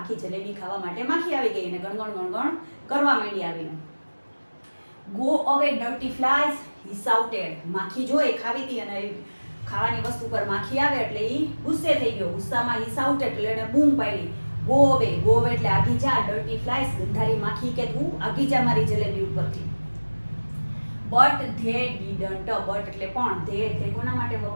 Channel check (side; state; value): both; inverted; correlation -1.00